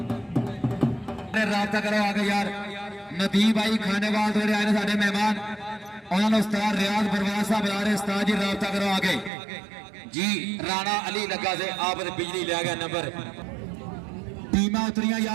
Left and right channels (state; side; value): drops out; left; at 9.3 s